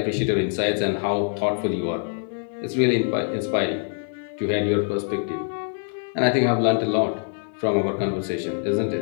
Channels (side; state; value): right; silent; 57 dB below the other